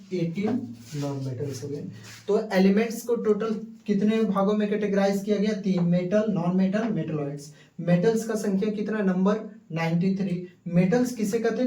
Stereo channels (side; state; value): both; identical; correlation 1.00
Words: 18 नॉन मेटल्स हो गए। तो एलिमेंट्स को टोटल कितने भागों में कैटेगराइज किया गया? 3, metal, non metal, metalloids. Metals का संख्या कितना? नंबर 93। मेटल्स किसे कहते